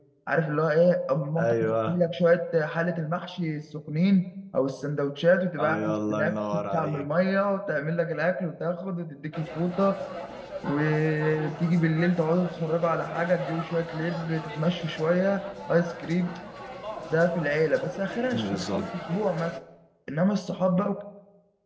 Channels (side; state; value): both; identical; correlation 1.00